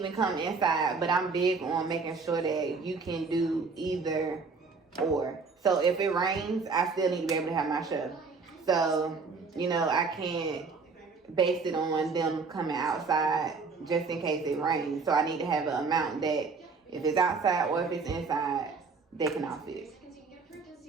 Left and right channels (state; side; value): quieter; left; 4.6 dB